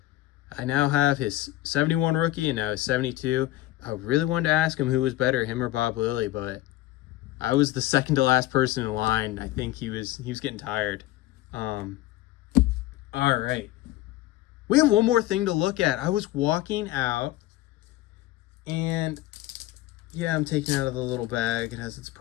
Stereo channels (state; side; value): quieter; right; 16.2 dB